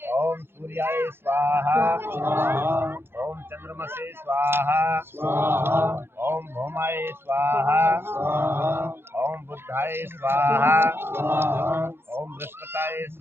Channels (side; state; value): left; late; 0.11 ms